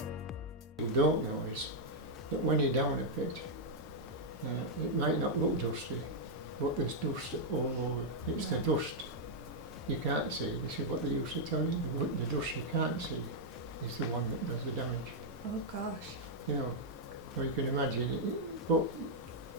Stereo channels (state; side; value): normal; both; correlation -0.03